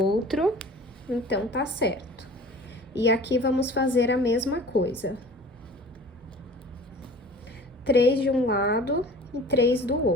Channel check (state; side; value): normal; both; correlation 0.44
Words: Então, tá certo. E aqui vamos fazer a mesma coisa. 3 de um lado e 3 do